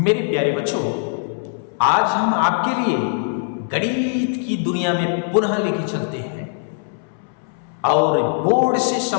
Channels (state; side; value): silent; right; 65 dB below the other